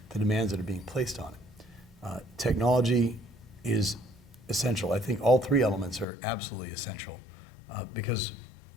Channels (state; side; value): drops out; right; at 6.1 s